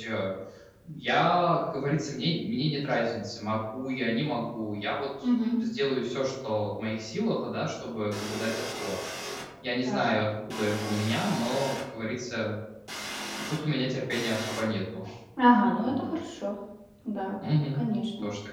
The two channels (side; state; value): both; identical; correlation 1.00